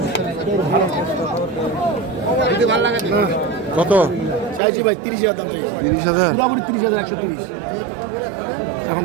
ভালো লাগে কত চাইছি ভাই? 30,000 দাম চাইছি। 30,000 পুরোপুরি 30,000 130 এখন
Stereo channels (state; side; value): drops out; left; at 4.6 s